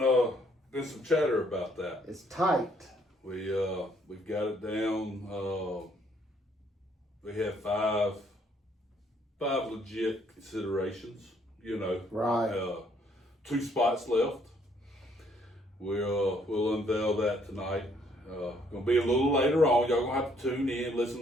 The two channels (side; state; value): both; normal; correlation 0.67